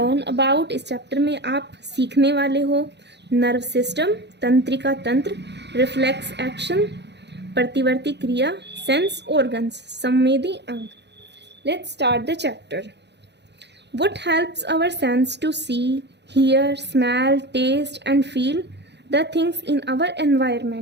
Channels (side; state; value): left; late; 0.50 ms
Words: about, इस chapter में आप सीखने वाले हो nerve system, तंत्रिका तंत्र, reflex action, प्रतिवर्ती क्रिया, sense organs, संवेदी अंग. Let's start the chapter. What helps our sense to see, hear, smell, taste and feel the things in our